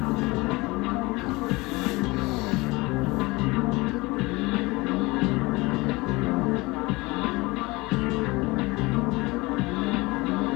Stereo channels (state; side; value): quieter; right; 23.0 dB